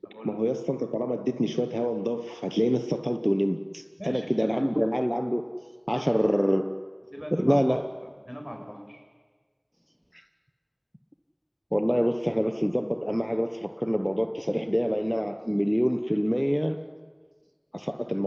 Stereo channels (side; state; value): both; identical; correlation 1.00